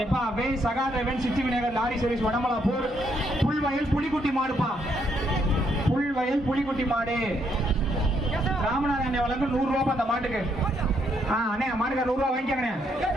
எப்பா. வே சகாதேவன் சித்தி விநாயகர் லாரி சர்வீஸ் வடமலாப்பூர் புல்வயல் புலிக்குட்டி மாடுப்பா. புல்வயல் புலிக்குட்டி மாடு. ராமநாதன் வழங்கும் 100 ரூபாய் அந்த மாட்டுக்கு. அண்ணே மாட்டுக்கு 100 ரூபாய் வாங்கிக்கங்க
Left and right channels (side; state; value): both; normal; correlation 0.74